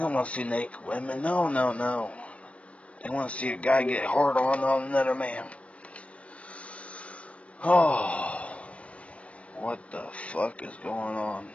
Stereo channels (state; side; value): late; right; 0.063 ms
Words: want to see naked women. No. They want to see a guy get hard on another man. Oh, what the fuck is going on?